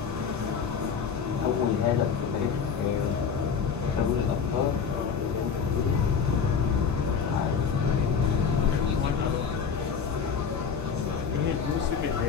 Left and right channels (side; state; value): right; quieter; 6.4 dB